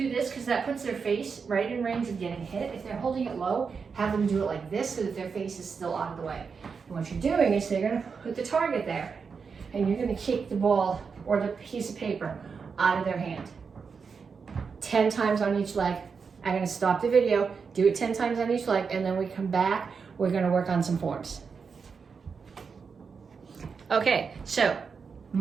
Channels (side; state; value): left; quieter; 5.6 dB